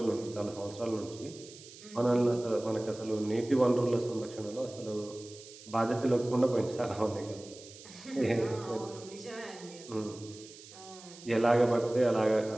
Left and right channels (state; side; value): noise; right; hiss, 18 dB below the sound